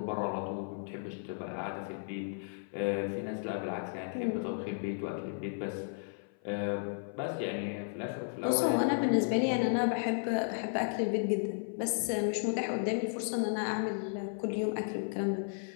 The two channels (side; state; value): right; silent; 55 dB below the other